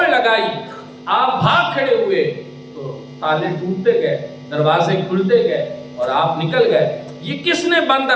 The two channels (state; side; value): identical; both; correlation 1.00